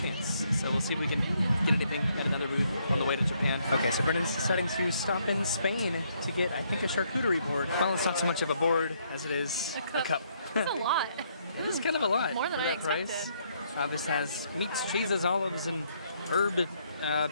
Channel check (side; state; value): both; inverted; correlation -0.71